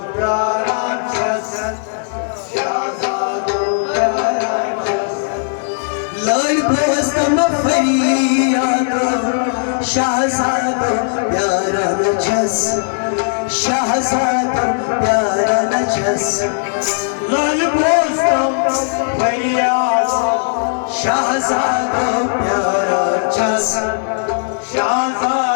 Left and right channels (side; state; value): right; silent; digital silence